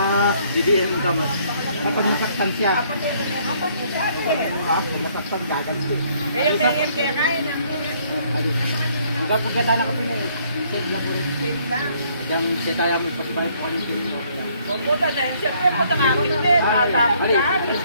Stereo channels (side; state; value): both; inverted; correlation -0.65